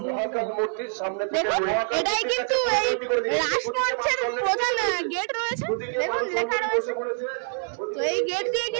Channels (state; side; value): silent; left; 61 dB below the other